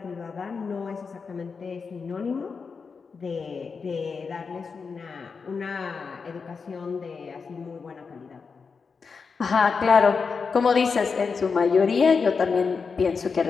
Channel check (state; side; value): quieter; right; 5.2 dB